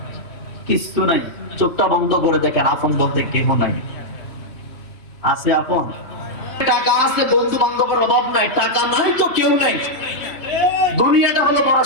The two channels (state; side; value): late; right; 2.7 ms